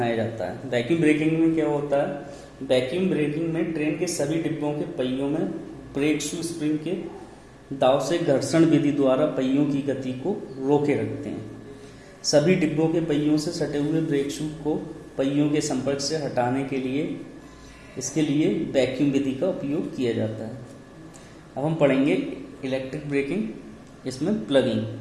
जाता है। वैक्यूम ब्रेकिंग में क्या होता है? वैक्यूम ब्रेकिंग में ट्रेन के सभी डिब्बों के पहियों में ब्रेक शू स्प्रिंग के दाव से घर्षण विधि द्वारा पहियों की गति को रोके रखते हैं। सभी डिब्बों के पहियों से सटे हुए ब्रेक शू को पहियों के संपर्क से हटाने के लिए इसके लिए वैक्यूम विधि का उपयोग किया जाता है। अब हम पढ़ेंगे इलेक्ट्रिक ब्रेकिंग, इसमें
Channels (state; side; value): identical; both; correlation 1.00